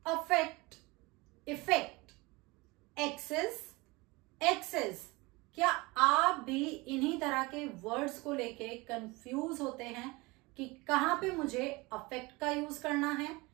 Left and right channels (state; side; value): quieter; left; 24.0 dB